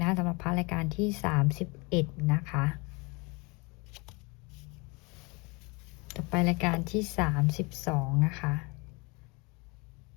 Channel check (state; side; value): quieter; right; 28.2 dB